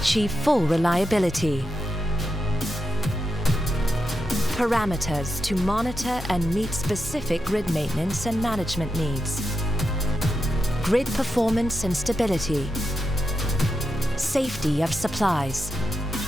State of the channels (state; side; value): normal; both; correlation 0.87